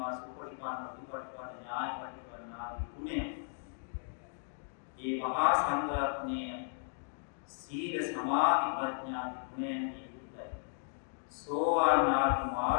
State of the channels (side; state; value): right; silent; digital silence